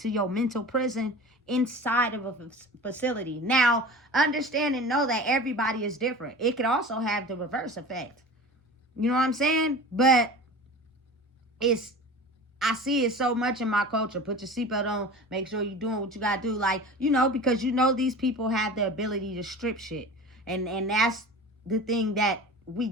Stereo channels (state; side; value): normal; both; correlation 0.36